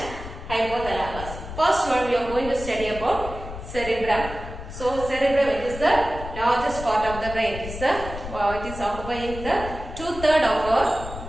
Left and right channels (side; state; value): left; noise; rumble, 10 dB below the sound